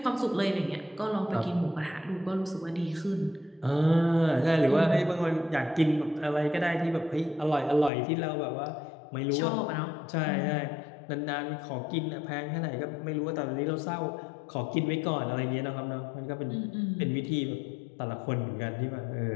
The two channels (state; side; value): drops out; right; at 7.9 s